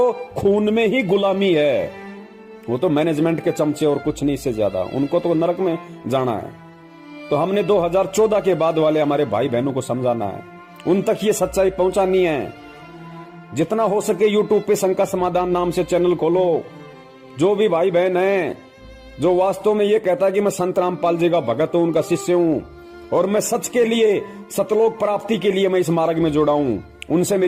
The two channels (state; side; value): identical; both; correlation 1.00